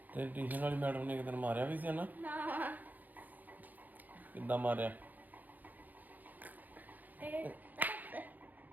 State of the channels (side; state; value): left; late; 0.083 ms